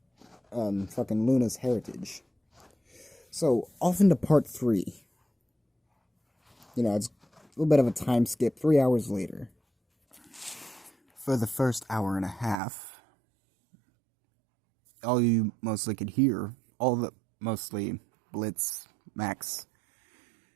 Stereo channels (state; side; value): drops out; left; at 12.6 s